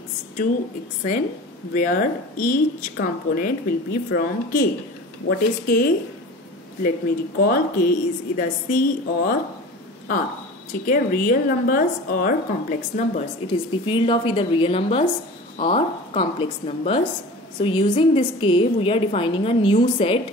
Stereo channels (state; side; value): normal; both; correlation 0.37